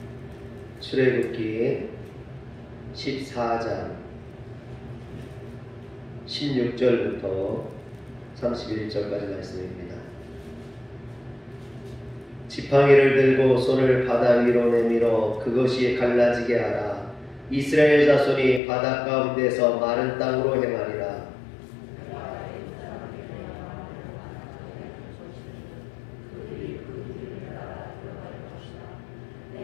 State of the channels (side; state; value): right; drops out; at 18.6 s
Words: 출애굽기 14장 16절부터 31절까지 말씀입니다. 지팡이를 들고 손을 바다 위로 내밀어 그것이 갈라지게 하라. 이스라엘 자손이 바다 가운데서 마른 땅으로 행하리라.